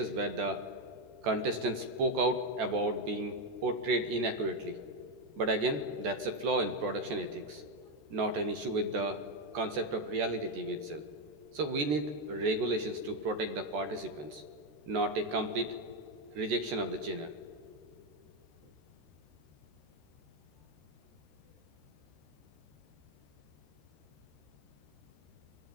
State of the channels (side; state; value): left; late; 14 ms